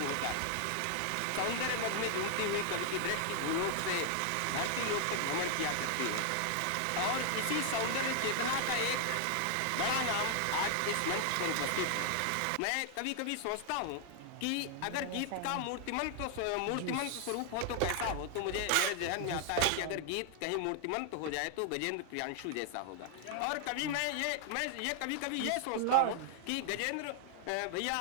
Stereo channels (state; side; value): different; both; correlation 0.00